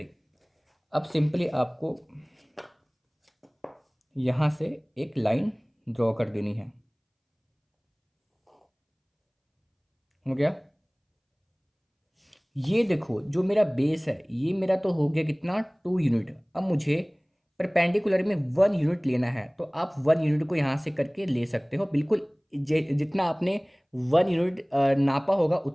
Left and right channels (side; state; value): both; identical; correlation 1.00